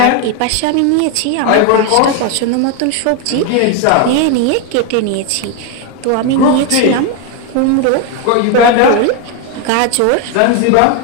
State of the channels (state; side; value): different; both; correlation 0.01